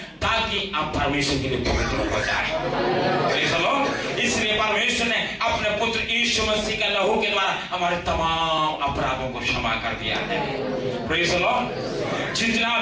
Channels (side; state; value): both; identical; correlation 1.00